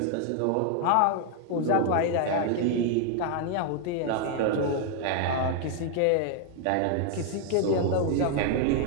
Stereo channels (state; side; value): different; both; correlation 0.00